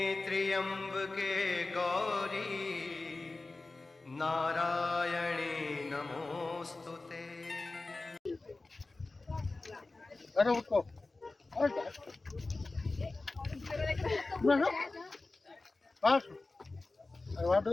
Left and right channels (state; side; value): quieter; right; 3.3 dB